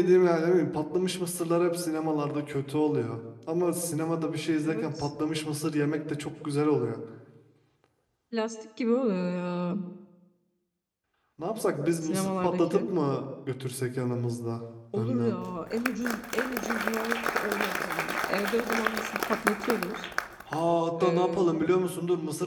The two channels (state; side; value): identical; both; correlation 1.00